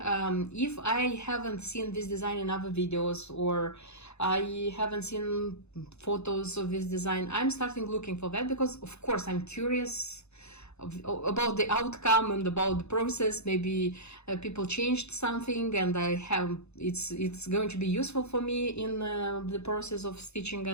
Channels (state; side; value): late; right; 0.80 ms